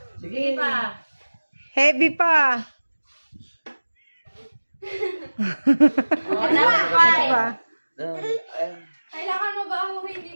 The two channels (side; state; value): both; inverted; correlation -1.00